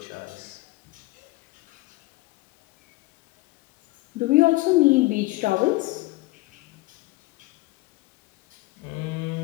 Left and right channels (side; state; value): right; quieter; 21.0 dB